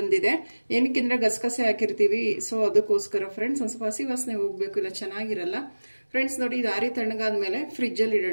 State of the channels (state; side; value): inverted; both; correlation -1.00